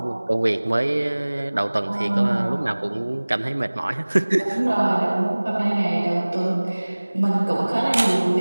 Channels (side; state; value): both; inverted; correlation -1.00